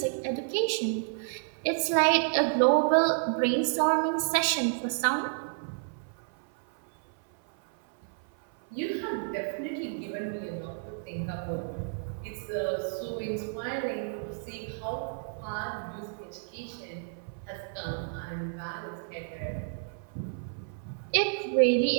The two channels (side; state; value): left; silent; 58 dB below the other